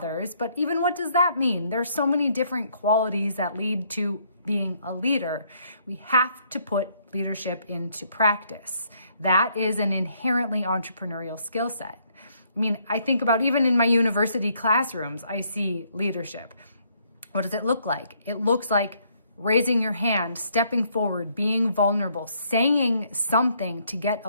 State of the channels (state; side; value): inverted; both; correlation -0.69